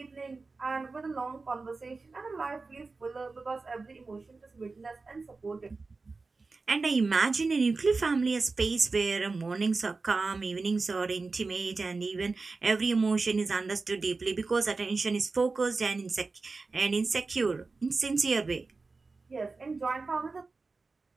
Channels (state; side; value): quieter; left; 3.9 dB